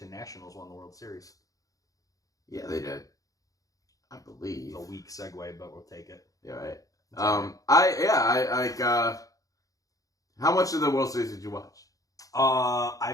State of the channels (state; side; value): late; right; 0.17 ms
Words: Nationals won the World Series. Yeah, they did. I believe. It's a weak segue, but we'll take it. Yeah, right. It's all right. How much of the World Series did you watch?